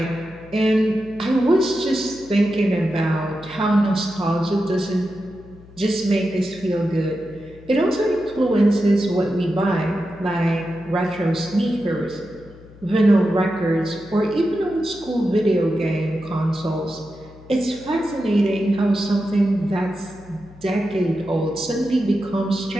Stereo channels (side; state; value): left; noise; hum, 21 dB below the sound